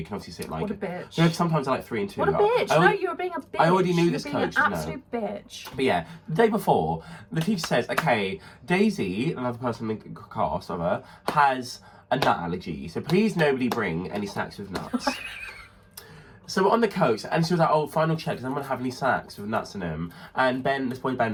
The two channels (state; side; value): identical; both; correlation 1.00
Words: can obviously sit like... What a bitch. You know, sometimes I like 3 and 2. What a bitch. No, you're being a bitch. I already knew this coach. You're being an absolute bitch. But yeah, the day before, the teacher says, okay, Daisy, another person in the cast of her, has a nut allergy. So please nobody bring any snacks with nuts. So we're on the coach, and she was like, oh, final check, does anyone have any snacks with nuts in them? And this boy